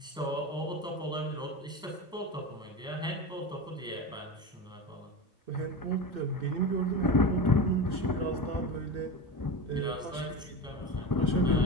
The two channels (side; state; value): both; normal; correlation 0.25